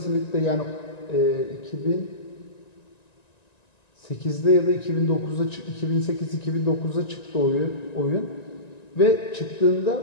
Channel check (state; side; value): late; right; 1.9 ms